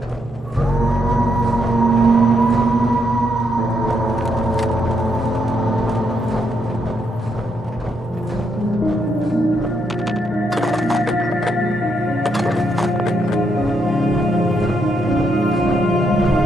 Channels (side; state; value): both; normal; correlation 0.78